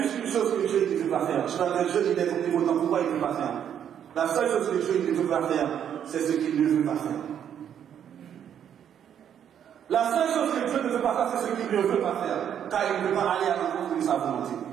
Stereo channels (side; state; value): left; quieter; 9.2 dB